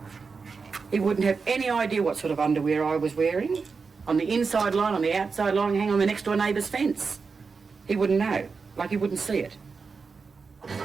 He wouldn't have any idea what sort of underwear I was wearing. On the inside line, on the outside line, hang on the next door neighbour's fence. He wouldn't know, like he wouldn't see it.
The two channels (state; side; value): quieter; left; 4.9 dB